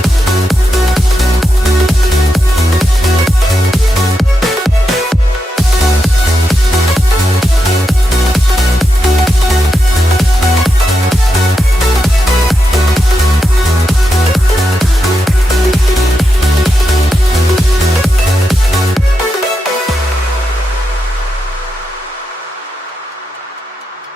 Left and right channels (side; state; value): both; normal; correlation 0.86